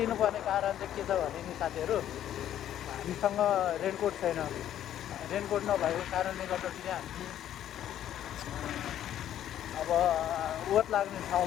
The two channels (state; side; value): quieter; right; 11.3 dB